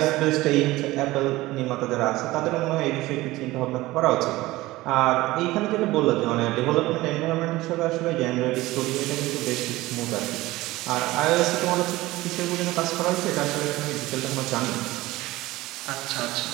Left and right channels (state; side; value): quieter; left; 18.6 dB